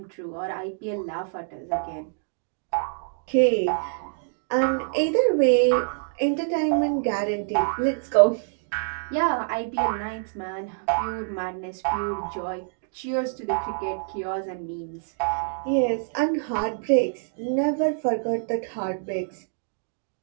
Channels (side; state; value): left; silent; digital silence